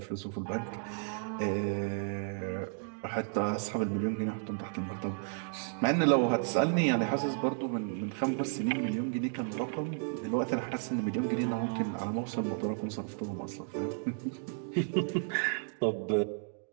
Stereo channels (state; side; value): silent; left; 56 dB below the other